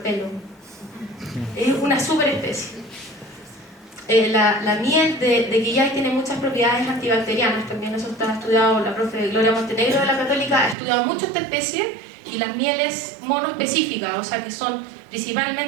pelo. Es una super especie. La miel de quillay tiene muchas propiedades antibacterianas, también eso está estudiado. La profe Gloria Montenegro de la Católica ha estudiado mucho esta especie, y las mieles monoespecíficas, o sea que son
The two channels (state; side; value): drops out; left; at 10.8 s